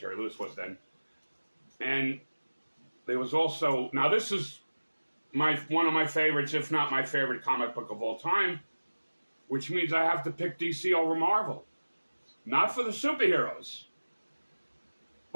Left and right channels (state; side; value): inverted; both; correlation -1.00